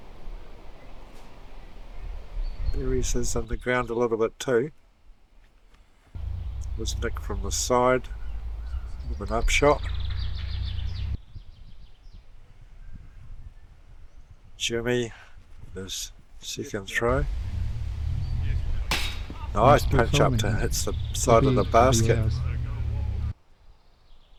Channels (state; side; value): identical; both; correlation 1.00